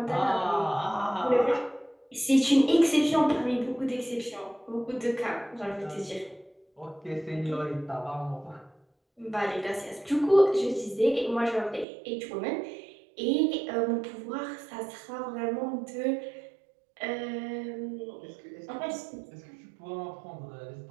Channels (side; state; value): left; drops out; at 11.9 s